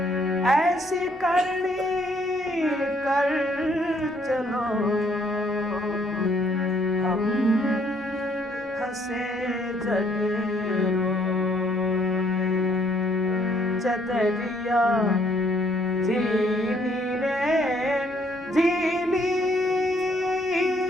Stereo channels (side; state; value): both; normal; correlation 0.67